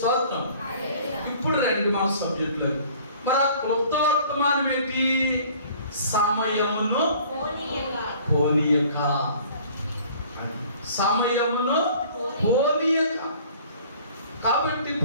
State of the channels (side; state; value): both; inverted; correlation -0.52